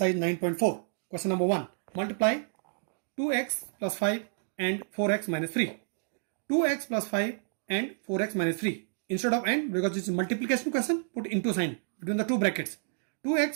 9.4. Question number 1. Multiply 2x plus 5 and 4x minus 3. 2x plus 5 and 4x minus 3. Instead of and, because it's a multiplication question, put into sign between the two brackets.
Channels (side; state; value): left; silent; digital silence